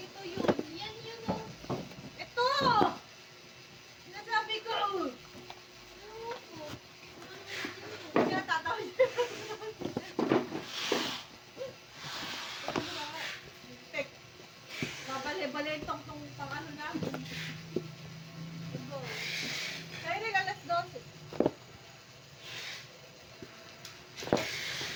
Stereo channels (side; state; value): both; identical; correlation 1.00